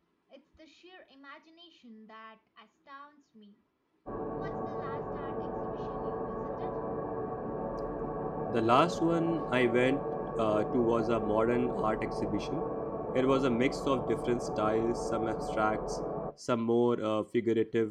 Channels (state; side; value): identical; both; correlation 1.00